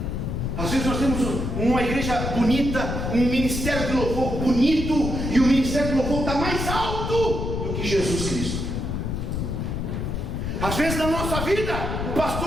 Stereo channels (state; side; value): noise; left; rumble, 2 dB below the sound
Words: Às vezes nós temos uma igreja bonita, um ministério de louvor bonito, e o ministério de louvor está mais alto do que Jesus Cristo. Às vezes na nossa vida, o